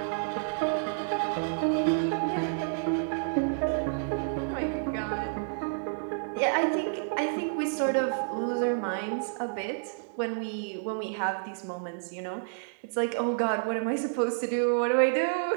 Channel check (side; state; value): left; silent; digital silence